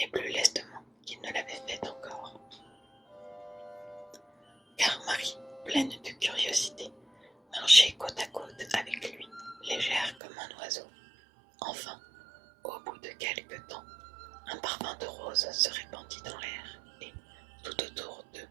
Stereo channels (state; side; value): drops out; left; at 10.2 s